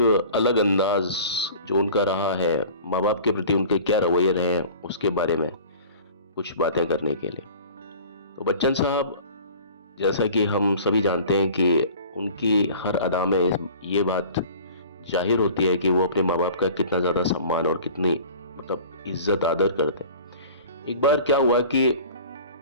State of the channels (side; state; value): both; inverted; correlation -0.43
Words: अलग अंदाज जो उनका रहा है, माँ बाप के प्रति उनके क्या रवैये रहे हैं, उसके बारे में कुछ बातें करने के लिए। तो बच्चन साहब, जैसा कि हम सभी जानते हैं कि उनकी हर अदा में ये बात जाहिर होती है कि वो अपने माँ बाप का कितना ज़्यादा सम्मान और कितनी इज्जत आदर करते हैं। एक बार क्या हुआ कि